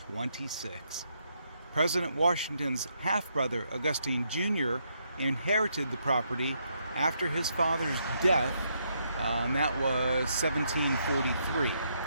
President Washington's half-brother, Augustine Jr., inherited the property after his father's death, and that was 1743.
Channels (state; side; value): inverted; both; correlation -0.76